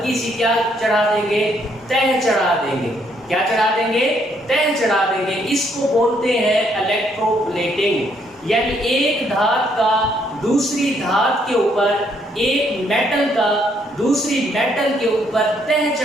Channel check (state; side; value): normal; both; correlation 0.71